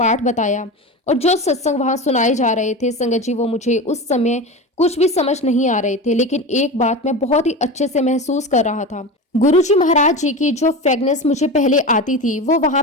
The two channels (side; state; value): both; normal; correlation 0.25